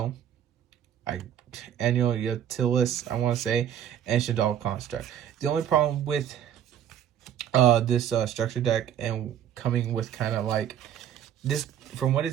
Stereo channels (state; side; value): quieter; left; 10.1 dB